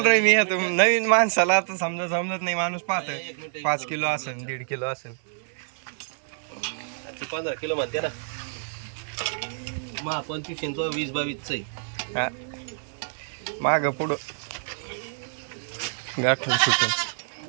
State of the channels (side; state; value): left; silent; digital silence